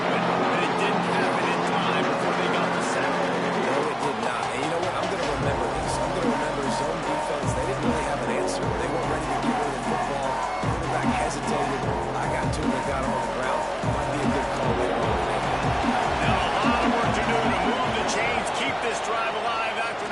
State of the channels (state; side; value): identical; both; correlation 1.00